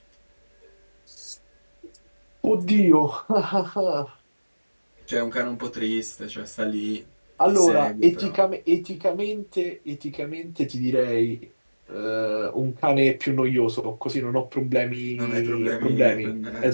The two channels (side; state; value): both; inverted; correlation -1.00